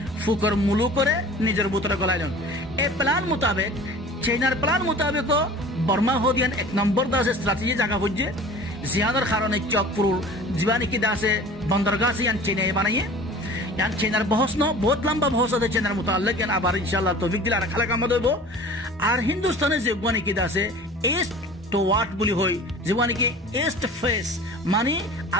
ফুকর মুলু করে নিজের ভিতরে গলাইলেন এই প্ল্যান মোতাবেক চাইনার প্ল্যান মোতাবেক বর্মা হদিয়ান এক নম্বর দাসে স্ট্র্যাটেজি জায়গা বুঝছে জিয়ানোর কারণে চকপুর জীবানি কি দাসে বন্দরগাহ ইয়ান চেনাই বানাইয়ে ইয়ান চেনার বহস ন বহুত লম্বা বহস আছে চেনার মোতাল্লিক ইয়ান আবার ইনশাআল্লাহ তৌফিক দিলে আর খালা কাম দেব আর হিন্দুস্তানে যে জীবানি কি দাসে ইস্ট তো ওয়াট বলি হই জীবানি কি ইস্ট ফেস মানে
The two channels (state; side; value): normal; both; correlation 0.42